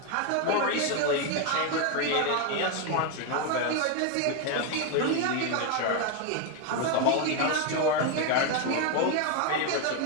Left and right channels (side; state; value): both; different; correlation 0.01